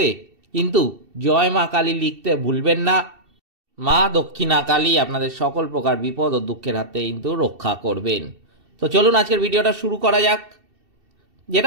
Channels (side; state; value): left; late; 2.7 ms